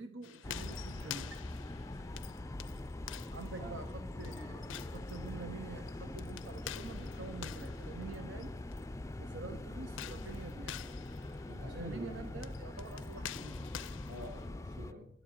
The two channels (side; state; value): both; normal; correlation 0.64